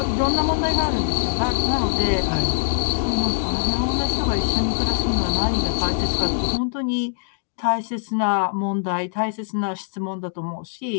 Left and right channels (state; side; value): silent; right; digital silence